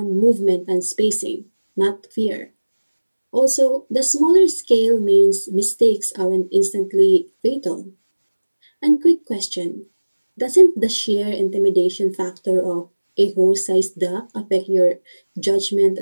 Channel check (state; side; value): inverted; both; correlation -1.00